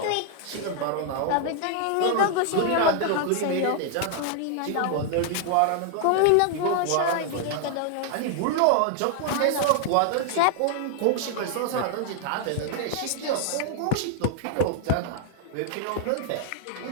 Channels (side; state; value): both; different; correlation 0.00